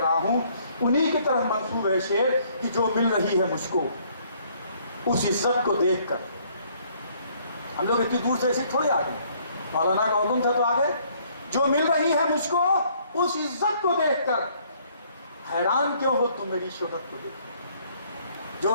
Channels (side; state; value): both; inverted; correlation -0.64